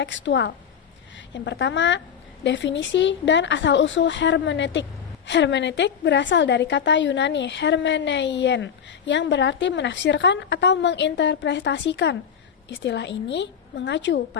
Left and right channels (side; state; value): right; quieter; 7.7 dB